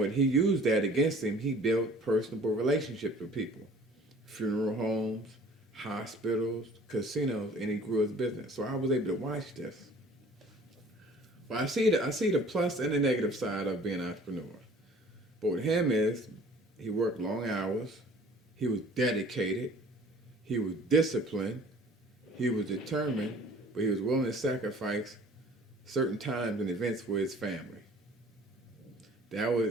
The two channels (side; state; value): both; normal; correlation 0.50